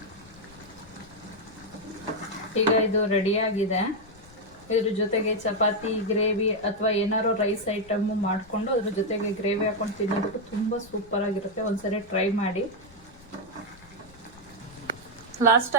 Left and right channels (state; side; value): noise; left; rumble, 24 dB below the sound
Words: ಈಗ ಇದು ರೆಡಿಯಾಗಿದೆ. ಇದ್ರ ಜೊತೆಗೆ ಚಪಾತಿ, ಗ್ರೇವಿ ಅಥವಾ ಏನಾದ್ರು ರೈಸ್ ಐಟಮ್ಮು ಮಾಡಿಕೊಂಡು ಅದ್ರ ಜೊತೆಗೆ ಗ್ರೇವಿ ಹಾಕೊಂಡು ತಿನ್ನೋದಕ್ಕೆ ತುಂಬ ಸೂಪರಾಗಿರುತ್ತೆ. ಒಂದ್ಸರಿ ಟ್ರೈ ಮಾಡಿ.